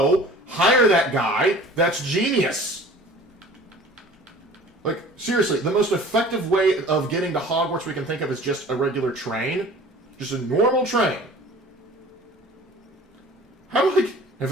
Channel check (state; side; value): normal; both; correlation 0.45